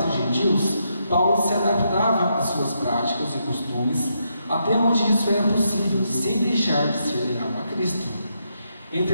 os gentios, Paulo se adaptava às suas práticas e costumes, até onde isso era possível, sem deixar de ser leal a Cristo.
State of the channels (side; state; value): both; inverted; correlation -0.80